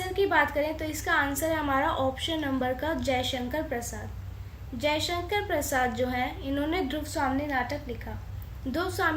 की बात करें तो इसका आंसर है हमारा ऑप्शन नंबर का जयशंकर प्रसाद। जयशंकर प्रसाद जो है इन्होंने ध्रुव स्वामिनी नाटक लिखा। ध्रुव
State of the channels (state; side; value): identical; both; correlation 1.00